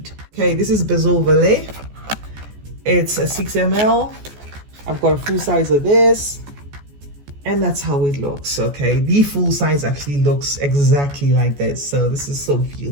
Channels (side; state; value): left; late; 14 ms